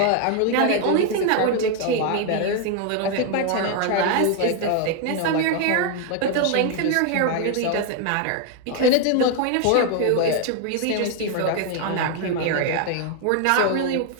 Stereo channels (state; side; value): different; both; correlation 0.01